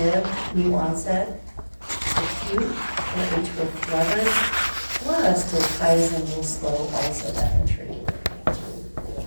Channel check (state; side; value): inverted; both; correlation -1.00